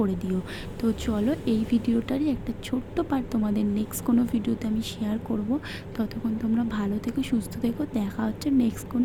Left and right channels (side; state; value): both; identical; correlation 1.00